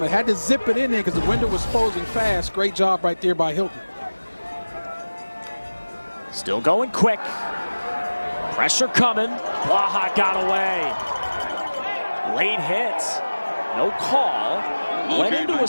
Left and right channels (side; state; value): both; inverted; correlation -1.00